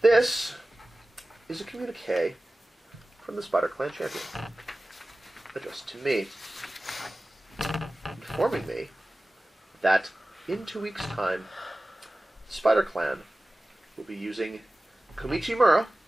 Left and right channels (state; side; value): normal; both; correlation 0.97